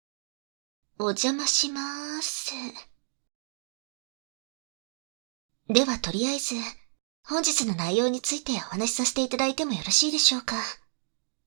お邪魔しまーす。ではとりあえず、本日の内容についてお話しさせていただいてもよろしいでしょうか。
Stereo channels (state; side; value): silent; left; digital silence